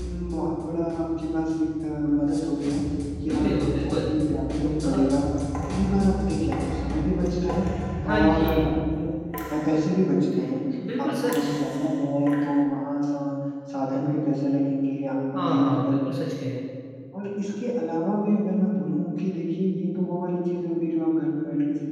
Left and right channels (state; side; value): identical; both; correlation 1.00